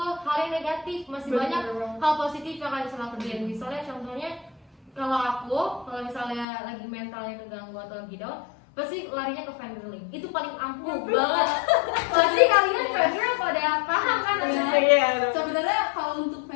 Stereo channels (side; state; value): right; drops out; at 6.5 s